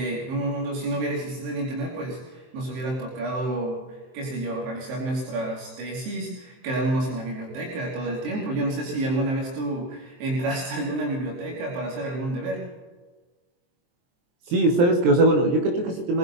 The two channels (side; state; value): left; late; 23 ms